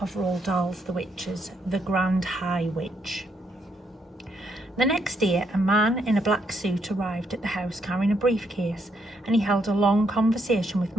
of Roald Dahl's The Witches, The Grand High Witch? The next day, a man in a black suit arrived at the house carrying a briefcase, and he held a long conversation with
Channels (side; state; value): both; normal; correlation 0.75